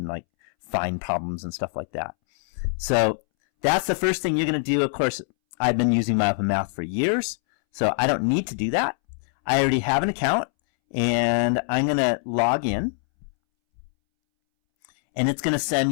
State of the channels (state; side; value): silent; right; 63 dB below the other